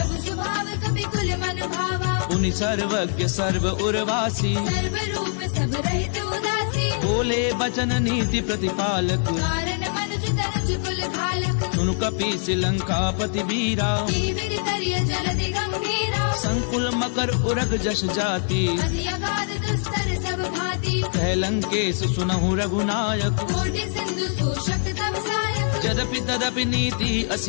स्वभाव कपि कुल मन भावा उनि सर्वज्ञ सर्व उर्वासी सर्व रूप सब रहित उदासी बोले बचन नीति प्रतिपालक कारण मनुज तनुज कुल घालक सुनु कपीस लंकापति वीरा जीवित करिय जलधि गंभीरा संकुल मकर उरग जस जाति अति अगाध दुस्तर सब भांति कह लंकेश सुनहु रघुनायक कोटि सिंधु शोषक तब सायक यद्यपि तदपि नीति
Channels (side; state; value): right; silent; digital silence